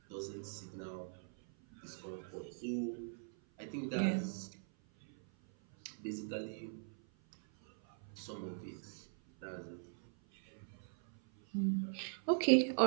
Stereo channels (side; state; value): left; silent; 50 dB below the other